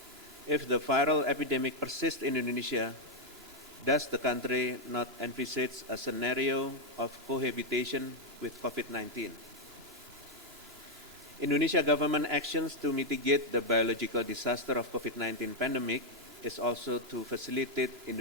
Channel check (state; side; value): normal; both; correlation 0.01